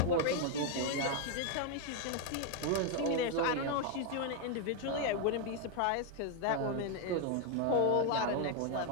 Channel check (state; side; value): different; both; correlation 0.01